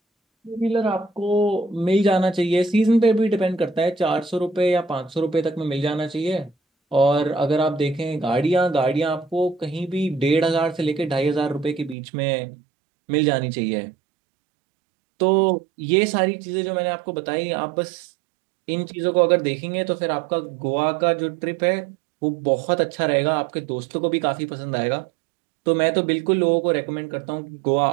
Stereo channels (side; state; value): left; drops out; at 12.0 s